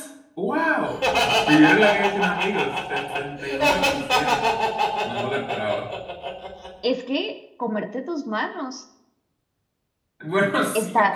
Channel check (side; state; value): both; identical; correlation 1.00